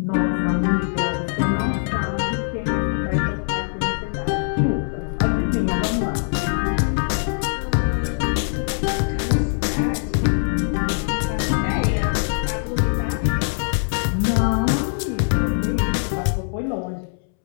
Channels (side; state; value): right; silent; 64 dB below the other